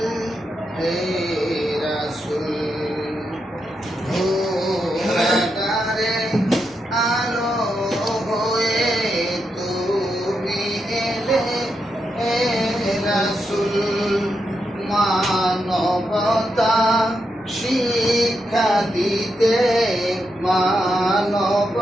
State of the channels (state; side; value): normal; both; correlation 0.84